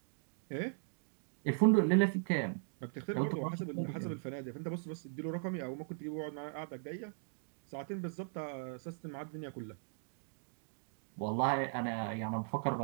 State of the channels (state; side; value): silent; left; digital silence